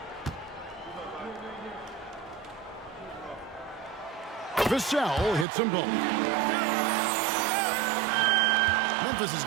Vassell hits them both. Memphis is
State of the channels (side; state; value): left; drops out; at 5.5 s